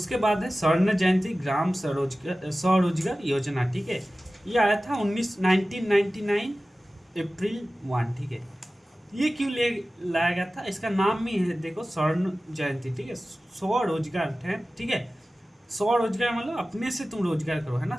बाद है स्वर्ण जयंती ग्राम स्वरोजगार योजना, ठीक है। ये आया था 1999 अप्रैल 1, ठीक है। ये क्यों लाया गया था, इसका नाम ही है देखो स्वर्ण जयंती, ठीक है, स्वरोजगार है, ठीक है। स्वरोजगार मतलब अपने से तुम रोजगार करो, है ना,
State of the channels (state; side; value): normal; both; correlation 0.96